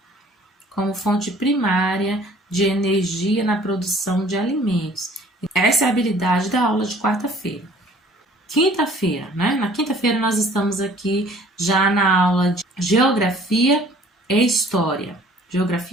de energia na produção de alimentos. Essa é a habilidade da aula de quarta-feira. Quinta-feira, né? Na quinta-feira nós estamos aqui já na aula de Geografia e História.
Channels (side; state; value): both; normal; correlation 0.53